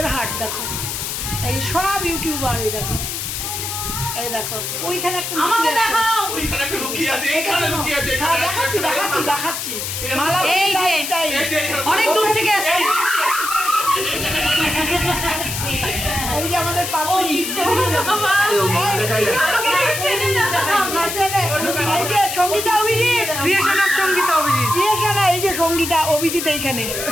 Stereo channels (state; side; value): noise; left; hiss, 4 dB below the sound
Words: হাট দেখো, এই সব ইউটিউবার, এই দেখো, এই দেখো ওইখানে একটা আমাকে দেখাও, ওইখানে একটা লুকিয়ে আছে, এখানে লুকিয়ে আছে, দেখাচ্ছি দেখাচ্ছি দেখাচ্ছি। মালা এই যে অনেক দূর থেকে আসছে, এই যে আমাদের পাপড়ি, এই যে Sangeeta Abhijit, creation of Sangeeta Abhijit, creation, এই যে সঙ্গীতা অভিজিৎ এইখানে,